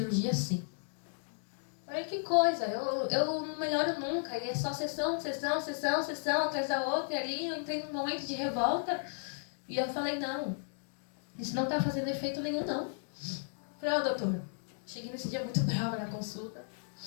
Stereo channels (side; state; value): right; silent; digital silence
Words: sim. Falei, que coisa, eu não melhoro nunca. E é só sessão atrás da outra. E ali eu entrei num momento de revolta. E eu falei, não, isso não tá fazendo efeito nenhum, não. Falei, doutor, cheguei nesse dia muito brava na consulta.